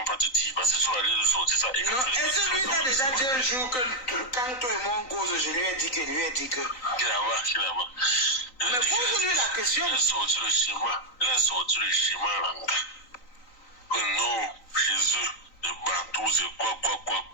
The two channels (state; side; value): late; right; 3.9 ms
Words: pas te dire. Parce que tu vas aller sortir ça. Non, est-ce que lui t'a déjà dit un jour que quand toi et moi on cause, je lui ai dit que... Qu'il a marre. Mais pose-lui la question. Il a sorti le schéma, Langa. Que non, chez eux, les Bantous, c'est quoi,